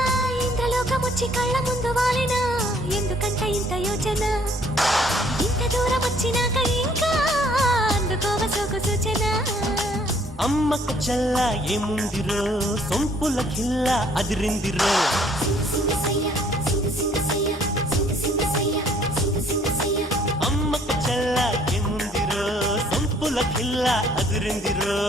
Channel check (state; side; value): normal; both; correlation 0.61